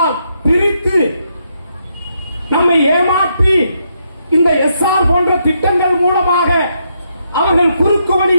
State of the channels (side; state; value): both; inverted; correlation -0.78